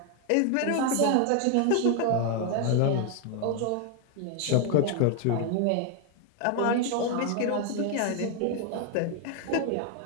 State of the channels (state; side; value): different; both; correlation 0.01